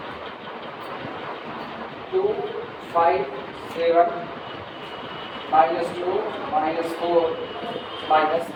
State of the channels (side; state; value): both; identical; correlation 1.00